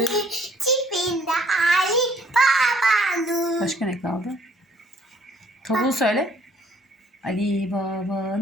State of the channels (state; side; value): normal; both; correlation 0.61